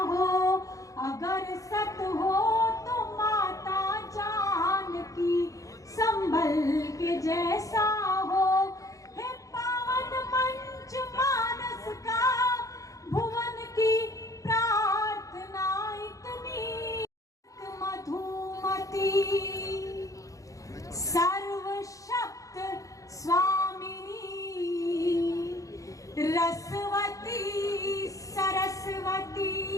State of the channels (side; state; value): right; late; 0.16 ms